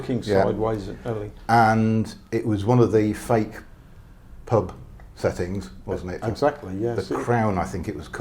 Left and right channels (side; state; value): both; identical; correlation 1.00